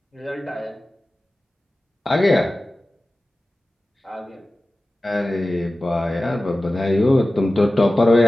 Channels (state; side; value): normal; both; correlation 0.96